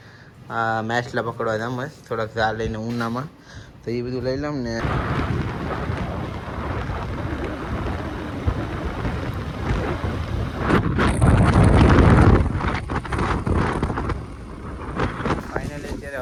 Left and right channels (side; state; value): both; identical; correlation 1.00